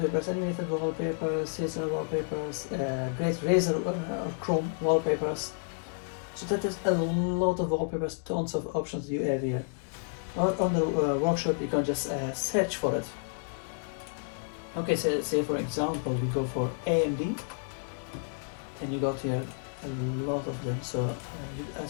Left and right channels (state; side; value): silent; right; digital silence